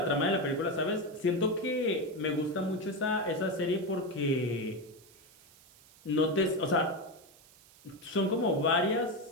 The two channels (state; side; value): noise; right; hiss, 25 dB below the sound